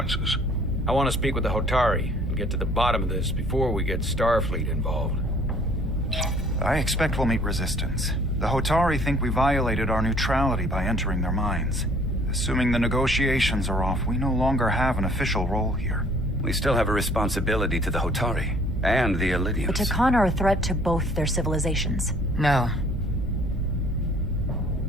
I want to speak with the Hotari and get to the bottom of this before we get Starfleet involved. I expect we'll meet resistance. The Hotari think we violated our neutrality by entering their minds. Assuming the negotiations are off, we no longer have an official role here. We still have a responsibility to the Hotari and the Elydians. The Takan are a threat to both their civilizations. No.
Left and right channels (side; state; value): both; normal; correlation 0.56